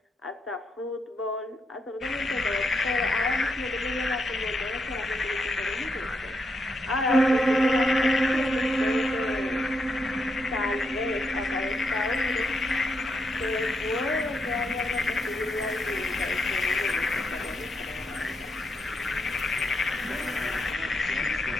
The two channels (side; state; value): both; normal; correlation 0.80